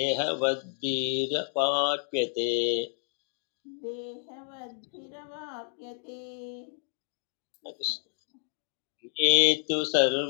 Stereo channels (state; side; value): silent; right; 58 dB below the other